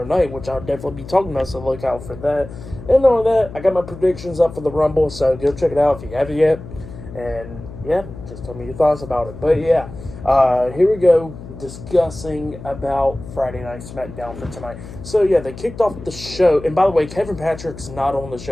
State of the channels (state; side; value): noise; left; hum, 14 dB below the sound